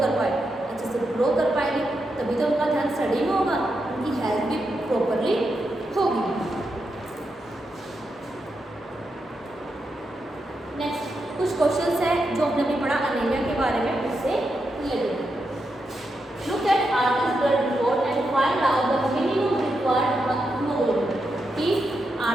पाए, अच्छे से ग्रो कर पाएंगे तभी तो उनका ध्यान स्टडी में होगा, उनकी हेल्थ भी प्रॉपरली होगी। नेक्स्ट कुछ क्वेश्चंस हैं जो हमने अभी पढ़ा अनीमिया के बारे में, उससे related. Look at Aarti's blood report and find out the minimum required hemoglobin। कि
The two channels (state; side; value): normal; both; correlation 0.85